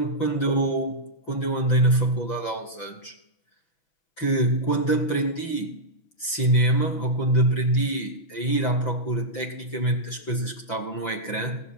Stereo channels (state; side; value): late; right; 6.0 ms